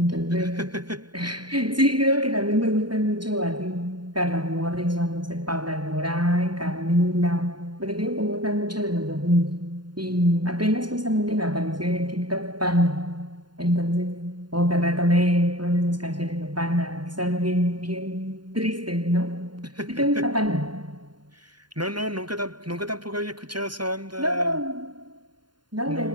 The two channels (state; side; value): late; left; 0.71 ms